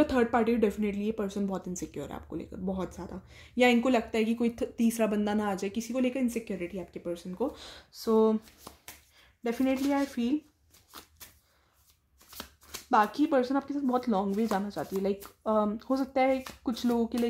थर्ड पार्टी, डेफिनेटली ये पर्सन बहुत इनसिक्योर है आपको लेकर, बहुत ज़्यादा। या इनको लगता है कि कोई तीसरा बंदा ना आ जाए, किसी को लेकर इनसिक्योरिटी है आपके पर्सन को। सो डेफिनेटली आई फील बाकी पर्सन आपके साथ बहुत लॉन्ग वे जाना चाहती है। लाइक हो सकता है कुछ लोगों के लिए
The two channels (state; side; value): identical; both; correlation 1.00